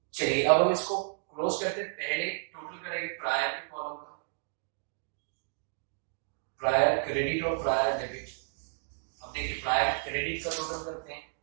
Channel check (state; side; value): silent; left; digital silence